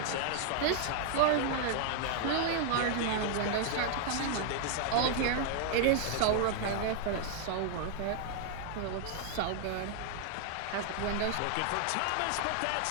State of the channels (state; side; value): different; both; correlation 0.00